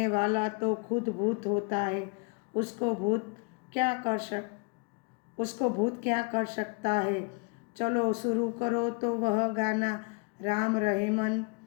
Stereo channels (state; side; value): quieter; right; 31.1 dB